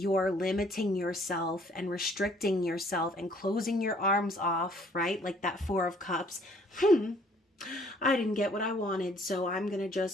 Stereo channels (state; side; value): normal; both; correlation 0.60